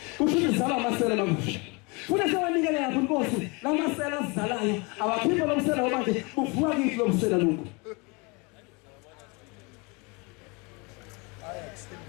kusho izala amasela makusha funa sewanikele lapho inkosi lamasela azizalayo abaphimbo lomsela manje buvuka kithi lomsela lokho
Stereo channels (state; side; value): quieter; right; 29.0 dB